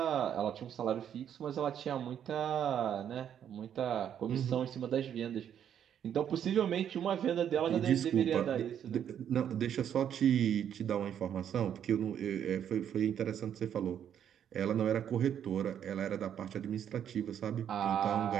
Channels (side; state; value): left; quieter; 9.3 dB